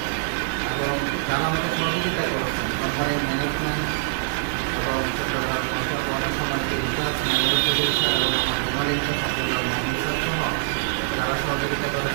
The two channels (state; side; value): silent; left; digital silence